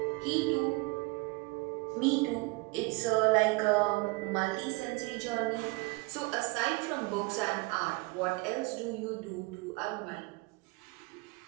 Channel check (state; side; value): quieter; left; 26.3 dB